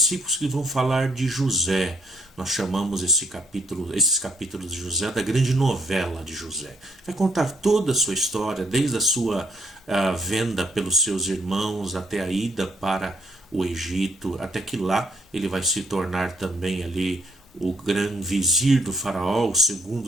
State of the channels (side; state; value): both; normal; correlation 0.69